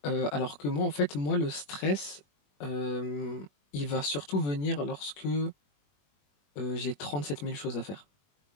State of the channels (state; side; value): late; right; 21 ms